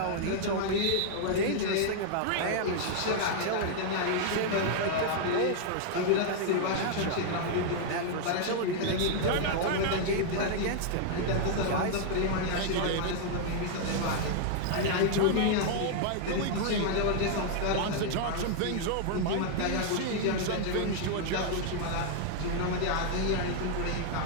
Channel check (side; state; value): both; different; correlation 0.00